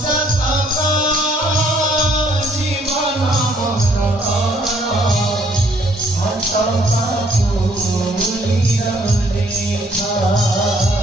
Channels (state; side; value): normal; both; correlation 0.65